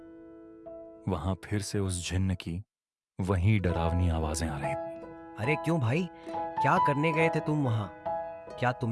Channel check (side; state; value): both; identical; correlation 1.00